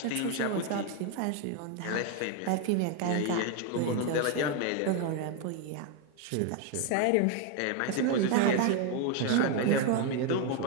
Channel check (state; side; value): different; both; correlation 0.01